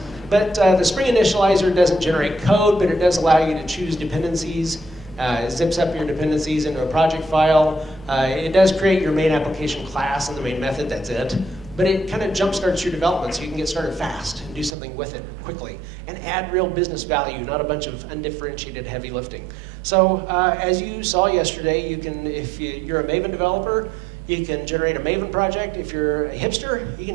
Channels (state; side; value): drops out; left; at 14.8 s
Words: But the Spring Initializer doesn't generate code, but it does allow you to choose dependencies. It zips up your dependencies into a project file. It does create your main application class and the main method, that's it. But it kind of jumpstarts your development so you can get started fast and do something with it quickly and add real business value, not a bunch of undifferentiated heavy lifting. So as you saw yesterday, you can, if you're a Maven developer, you can generate a Maven project. If you're a hipster, you